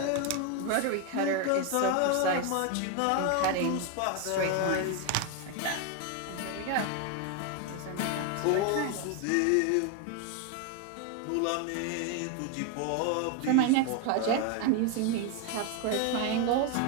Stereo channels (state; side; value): different; both; correlation 0.01